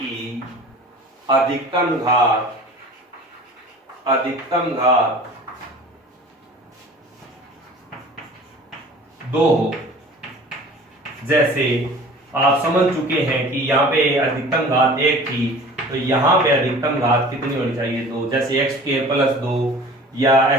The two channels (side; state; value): both; normal; correlation 0.43